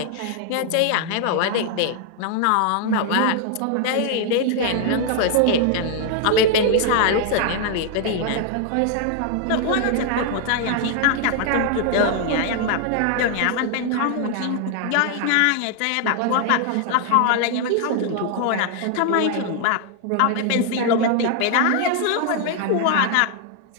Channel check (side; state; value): both; different; correlation 0.00